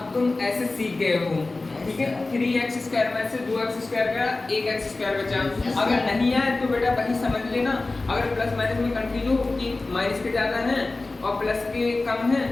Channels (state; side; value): quieter; right; 3.3 dB